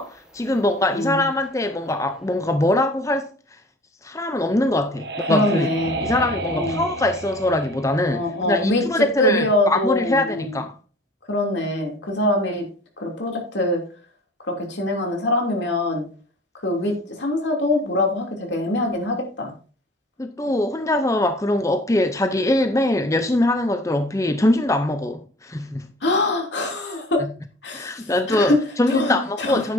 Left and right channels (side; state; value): both; normal; correlation 0.46